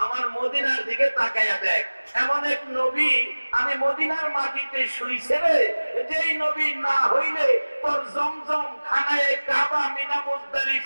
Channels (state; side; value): inverted; both; correlation -1.00